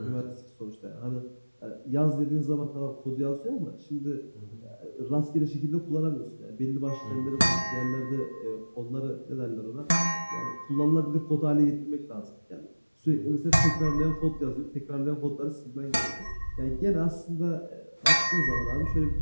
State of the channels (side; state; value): both; inverted; correlation -1.00